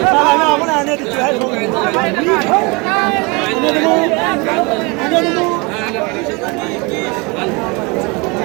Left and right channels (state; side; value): quieter; left; 28.1 dB